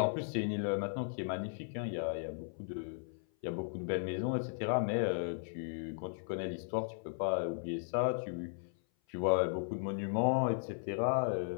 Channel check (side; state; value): right; silent; 54 dB below the other